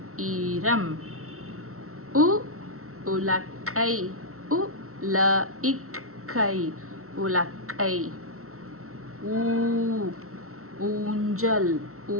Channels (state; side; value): late; left; 0.63 ms